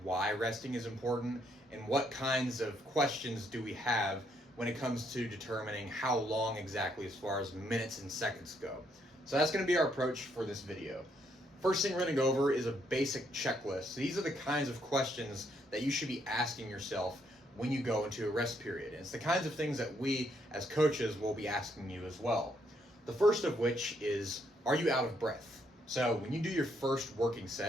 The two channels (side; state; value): both; normal; correlation 0.73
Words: why resting is important and what kinds of questions do we have when it comes to determining how long exactly as far as minutes and seconds go. So that's going to be our approach for this video. First thing we're going to go over is a basic checklist. So these are the kinds of questions that you should be asking yourself when you go into a rest period. And it's the kinds of things that we as coaches will be asking you as well. The first of which is, are you out of breath? So when you do your first working